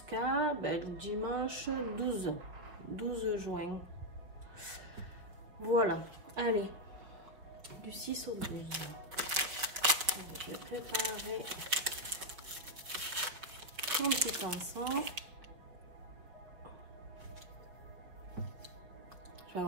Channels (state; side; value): late; left; 5.6 ms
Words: le dimanche 12 juin. Voilà, allez, du 6 au 12. Je vais préparer mon petit encens. Je vais